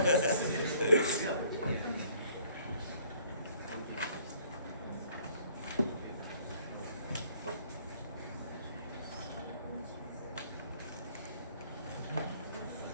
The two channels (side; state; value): both; inverted; correlation -0.59